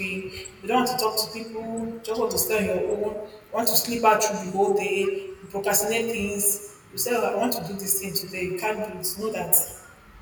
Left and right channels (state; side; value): identical; both; correlation 1.00